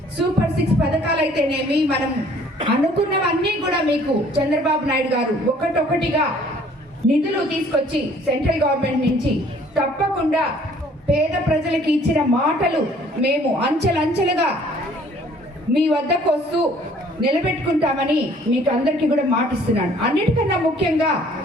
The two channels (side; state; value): both; normal; correlation 0.57